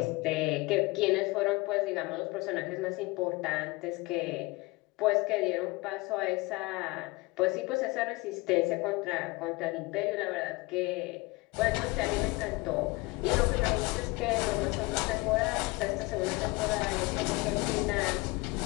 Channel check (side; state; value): right; quieter; 23.8 dB